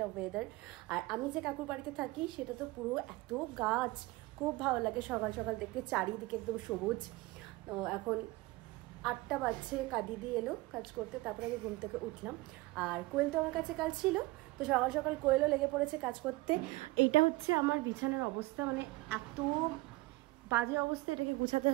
ওয়েদার। আর আমি যে কাকুর বাড়িতে থাকি সেটা তো পুরো এত গাছ, খুব ভালো লাগে সকাল সকাল দেখতে, চারিদিকে একদম সবুজ। তো এখন 8টা বাজছে, দিদি এলো কাজ করতে, তারপরে আমি ঘুম থেকে উঠলাম। আর কোয়েল তো আমার কাছে কাজ ছিল, তো সকাল সকাল কোয়েলও লেগে পড়েছে কাজ করতে। এইটা হচ্ছে আমার বিছানার অবস্থা, মানে এত বাজে অবস্থা, এটাকে গুছাতে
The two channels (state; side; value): quieter; left; 20.9 dB